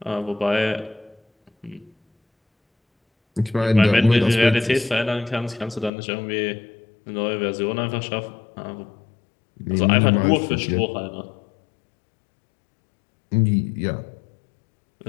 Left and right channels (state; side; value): drops out; right; at 5.9 s